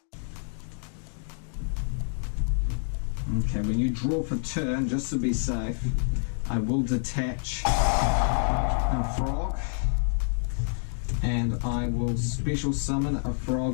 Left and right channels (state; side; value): silent; right; digital silence